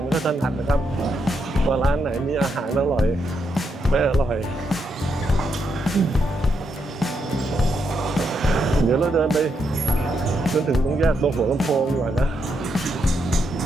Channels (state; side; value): normal; both; correlation 0.80